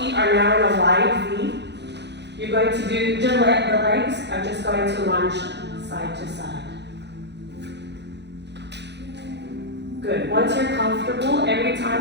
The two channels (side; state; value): left; late; 0.50 ms